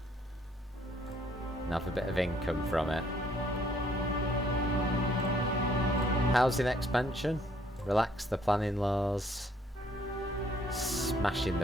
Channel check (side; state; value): both; normal; correlation 0.65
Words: And have a bit of income from it. Housing expansion. Relax the planning laws. Smashing